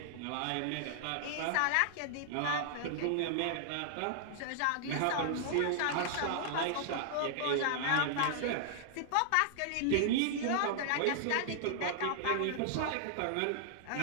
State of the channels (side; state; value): both; different; correlation -0.01